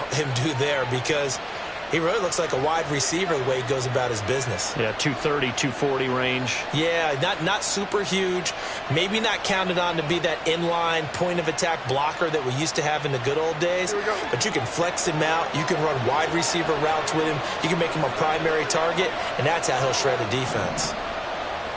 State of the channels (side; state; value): both; identical; correlation 1.00